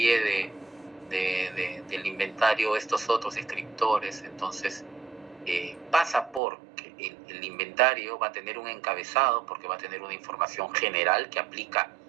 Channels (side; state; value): left; drops out; at 6.4 s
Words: del inventario estos otros descriptores. Entonces, pasa por que el inventario va a tener un encabezado, porque va a tener una información general que aplica